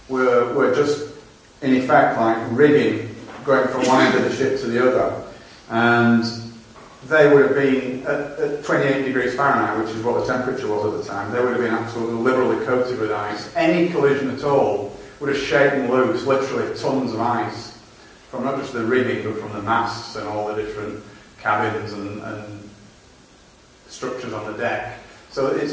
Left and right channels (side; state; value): both; identical; correlation 1.00